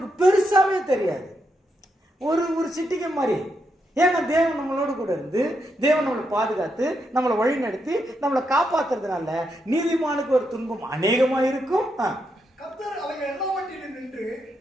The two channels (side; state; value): both; normal; correlation 0.82